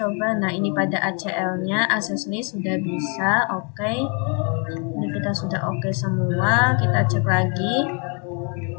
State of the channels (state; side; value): quieter; right; 36.6 dB